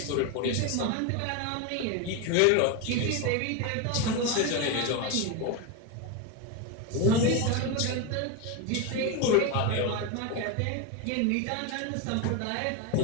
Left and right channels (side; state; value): both; different; correlation 0.03